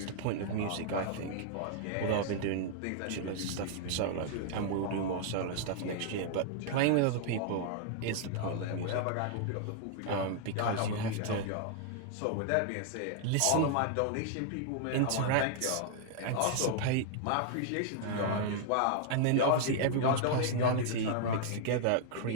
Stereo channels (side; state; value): both; different; correlation 0.00